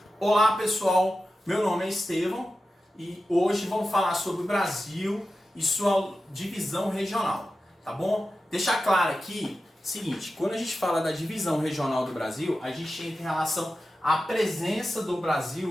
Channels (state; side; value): normal; both; correlation 0.93